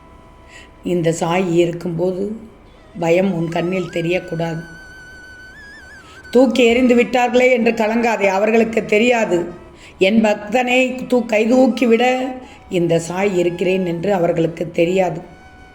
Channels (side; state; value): both; identical; correlation 1.00